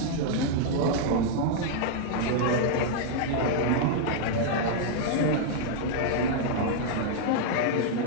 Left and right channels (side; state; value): both; different; correlation -0.01